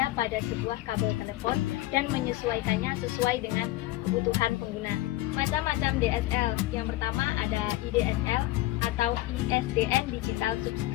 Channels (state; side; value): quieter; right; 16.9 dB